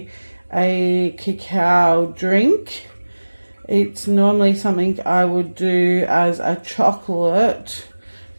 a cacao drink. It's normally something I would do as a chocolate,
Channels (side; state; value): both; inverted; correlation -1.00